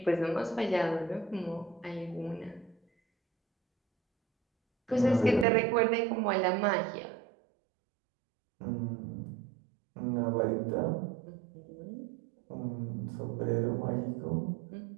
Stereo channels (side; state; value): left; drops out; at 5.5 s